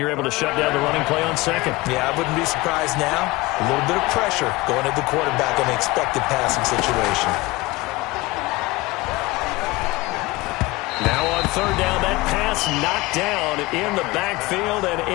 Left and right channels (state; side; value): quieter; right; 21.4 dB